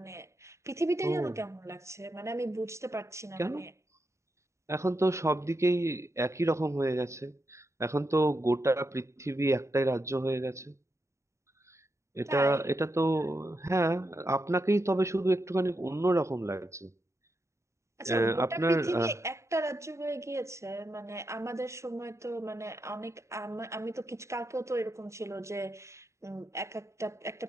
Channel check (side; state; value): left; late; 0.14 ms